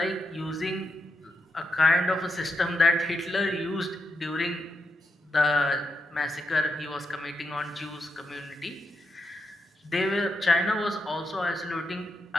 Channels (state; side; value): normal; both; correlation 0.84